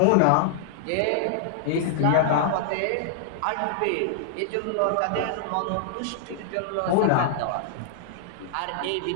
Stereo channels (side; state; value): both; different; correlation -0.01